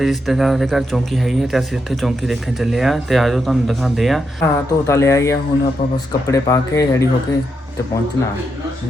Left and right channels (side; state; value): both; normal; correlation 0.83